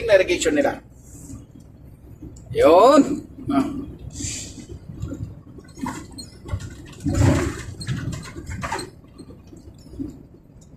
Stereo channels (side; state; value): both; identical; correlation 1.00